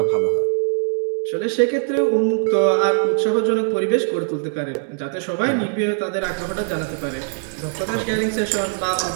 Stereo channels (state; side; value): silent; left; digital silence